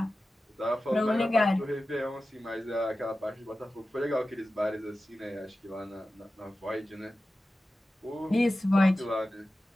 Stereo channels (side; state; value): both; normal; correlation 0.94